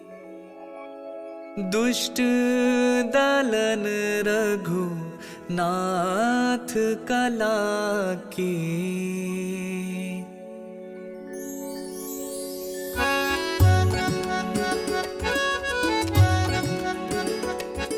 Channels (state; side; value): identical; both; correlation 1.00